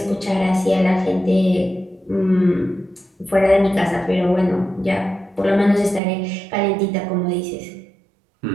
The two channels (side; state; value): left; drops out; at 6.0 s